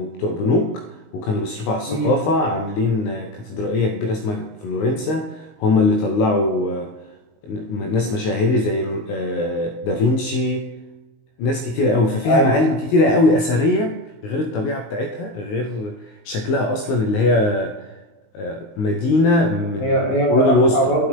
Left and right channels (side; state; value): right; late; 19 ms